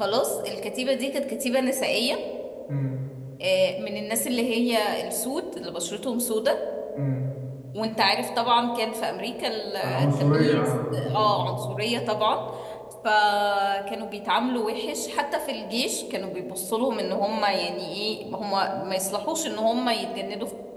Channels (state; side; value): identical; both; correlation 1.00